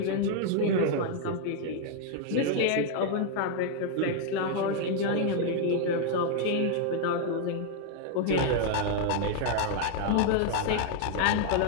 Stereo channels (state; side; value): different; both; correlation 0.00